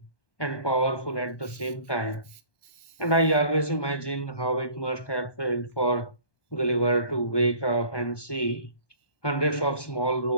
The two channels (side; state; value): right; late; 1.2 ms